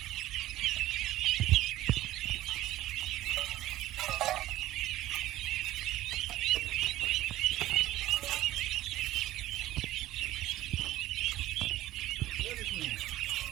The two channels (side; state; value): left; quieter; 15.2 dB